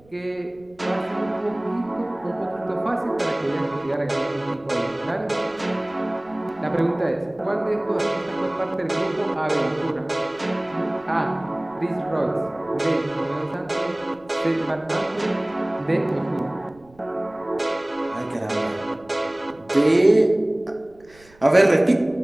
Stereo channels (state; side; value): noise; right; rumble, 28 dB below the sound